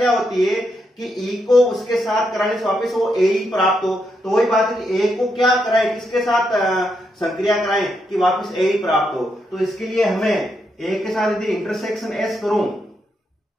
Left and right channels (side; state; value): both; normal; correlation 0.81